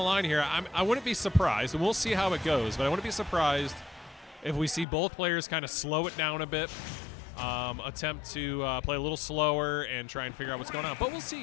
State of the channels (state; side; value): drops out; right; at 4.9 s